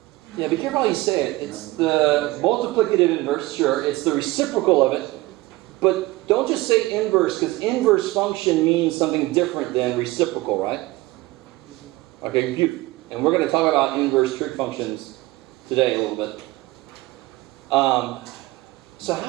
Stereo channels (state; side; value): quieter; left; 19.7 dB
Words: Yeah, be careful how you say it. It's the multiplicative inverse, sure. It's the reciprocal of it. But don't just say inverse, because inverse function means something different than reciprocal, right? Okay, beautiful. And we're going to talk about inverse trig functions today a little bit. So